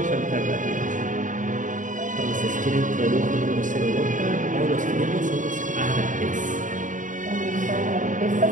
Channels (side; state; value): left; late; 0.37 ms